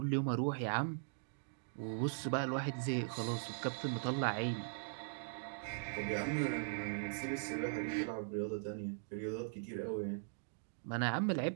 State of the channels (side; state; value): left; silent; digital silence